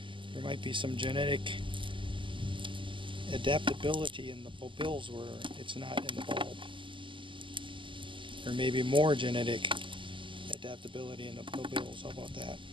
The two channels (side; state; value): left; late; 0.25 ms